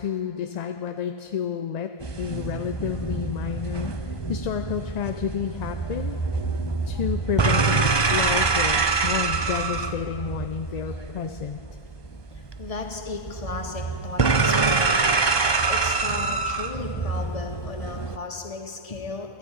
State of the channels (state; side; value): late; right; 1.2 ms